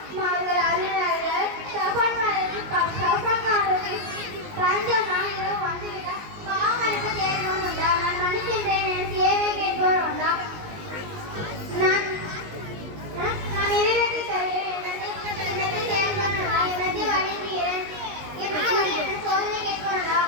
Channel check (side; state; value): left; late; 19 ms